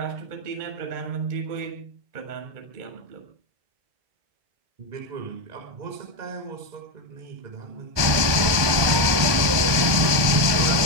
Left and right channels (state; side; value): late; left; 1.2 ms